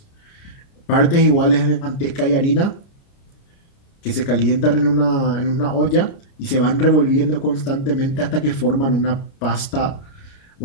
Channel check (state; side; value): late; right; 30 ms